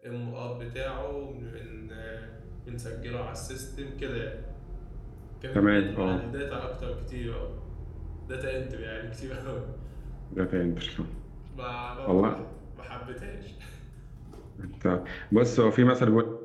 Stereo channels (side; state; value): both; identical; correlation 1.00